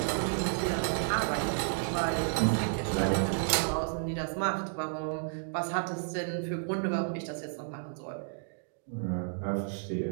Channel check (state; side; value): silent; left; digital silence